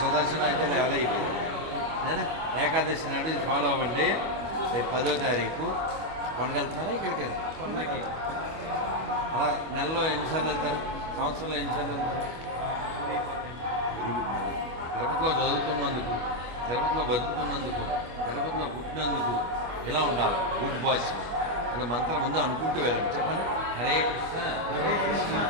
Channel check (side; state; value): left; late; 25 ms